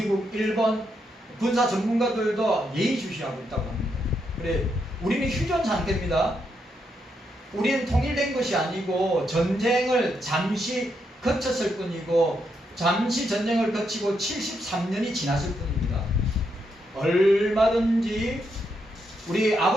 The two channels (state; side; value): normal; both; correlation 0.80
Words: 일본 군사 전문가들도 예의주시하고 있다고 합니다. 그래, 우리는 휴전 상태입니다. 우리는 통일된 것이 아니고 전쟁을 잠시 거쳤을 뿐이고 잠시 전쟁을 거치고 73년이 지났을 뿐입니다. 얼마든지 우리